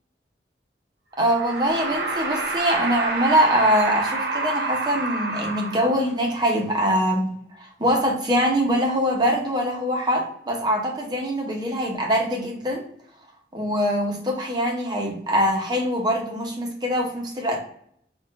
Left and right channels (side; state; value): both; normal; correlation 0.15